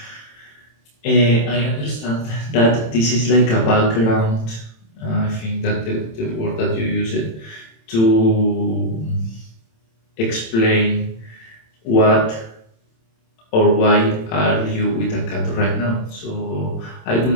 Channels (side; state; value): right; late; 27 ms